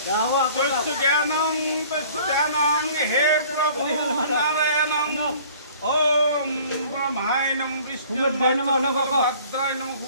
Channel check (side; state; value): both; inverted; correlation -0.51